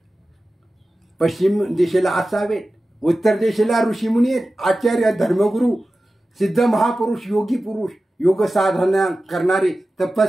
पश्चिम दिशेला असावेत. उत्तर दिशेला ऋषीमुनी आहेत, आचार्य धर्मगुरू, सिद्ध महापुरुष, योगी पुरुष, योग साधना करणारे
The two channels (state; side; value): normal; both; correlation 0.95